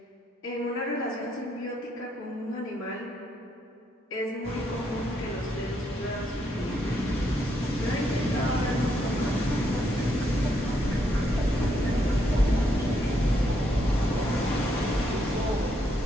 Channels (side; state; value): both; normal; correlation 0.76